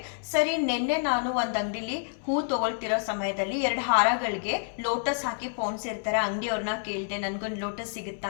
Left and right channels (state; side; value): silent; right; 59 dB below the other